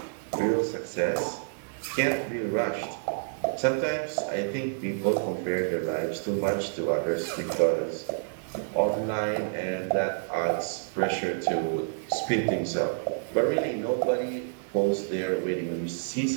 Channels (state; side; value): silent; left; 59 dB below the other